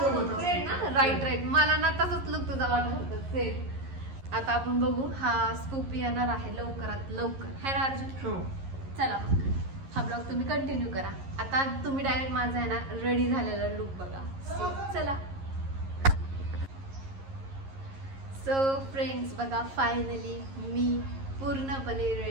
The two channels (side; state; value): left; late; 11 ms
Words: फ्रेंड ना, राईट. मला ना तसंच लुक तुझा वाटत होता सेम. आता आपण बघू, हा स्कूप येणार आहे लवकरात लवकर, है ना अर्जुन? चला हा ब्लॉग तुम्ही कंटिन्यू करा. आता तुम्ही डायरेक्ट माझा आहे ना रेडी झालेला लुक बघा. चला. सो फ्रेंड्स बघा, फायनली मी पूर्णपणे